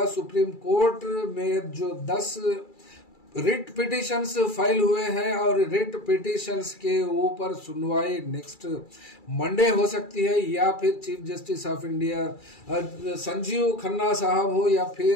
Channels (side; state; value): right; late; 2.3 ms